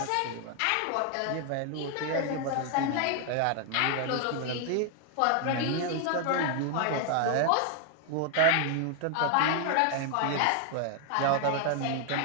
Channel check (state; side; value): different; both; correlation 0.00